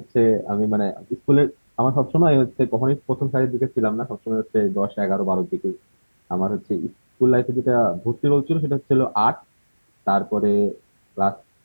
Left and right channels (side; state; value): both; inverted; correlation -1.00